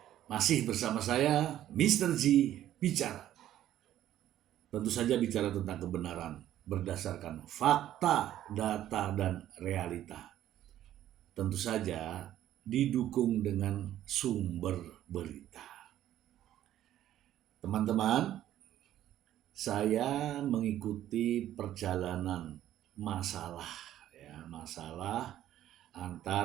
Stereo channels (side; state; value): left; quieter; 12.4 dB